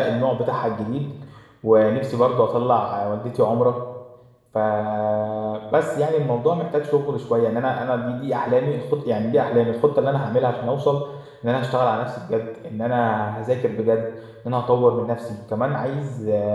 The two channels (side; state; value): both; identical; correlation 1.00